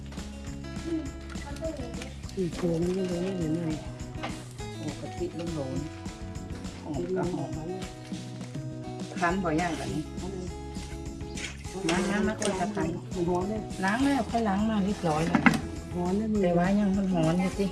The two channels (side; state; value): both; identical; correlation 1.00